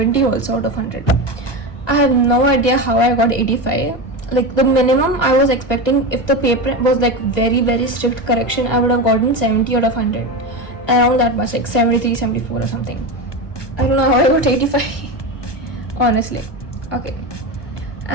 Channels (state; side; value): late; right; 1.2 ms